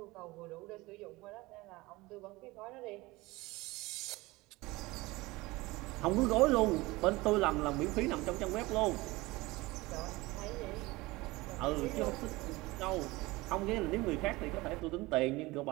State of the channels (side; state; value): left; quieter; 21.3 dB